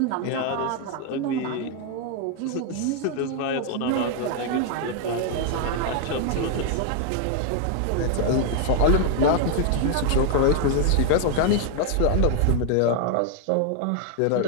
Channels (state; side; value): different; both; correlation 0.00